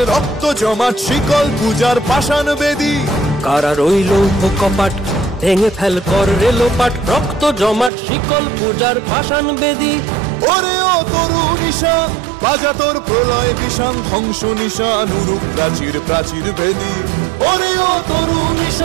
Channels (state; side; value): drops out; left; at 7.9 s